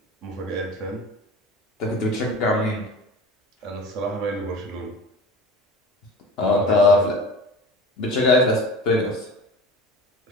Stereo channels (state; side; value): normal; both; correlation 0.36